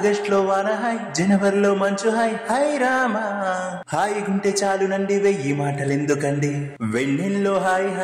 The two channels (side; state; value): both; identical; correlation 1.00